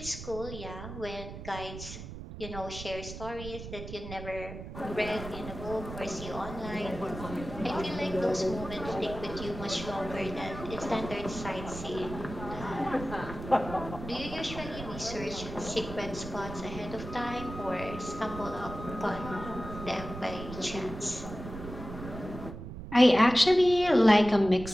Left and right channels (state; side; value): noise; right; rumble, 10 dB below the sound